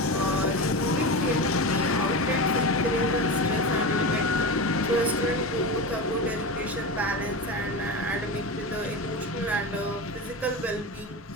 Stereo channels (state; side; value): normal; both; correlation 0.23